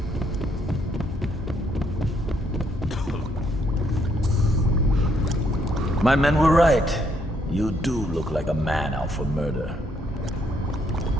My men were right. You do look like a man out for murder.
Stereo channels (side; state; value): both; normal; correlation 0.72